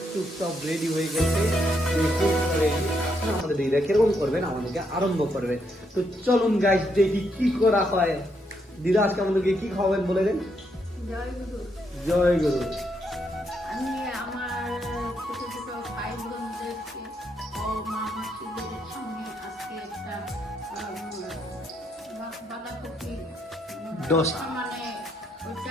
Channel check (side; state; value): both; normal; correlation 0.76